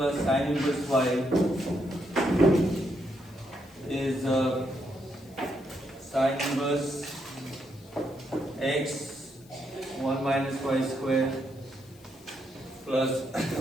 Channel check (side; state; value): left; noise; hiss, 26 dB below the sound